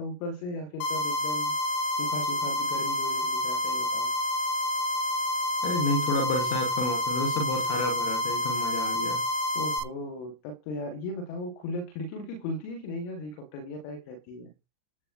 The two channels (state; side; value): late; right; 40 ms